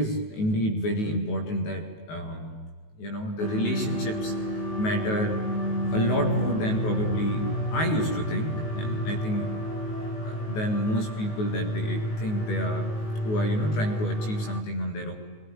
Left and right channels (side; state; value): right; late; 19 ms